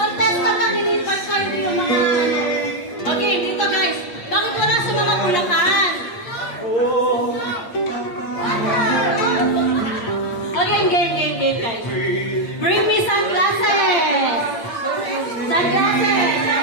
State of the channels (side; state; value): right; late; 8.7 ms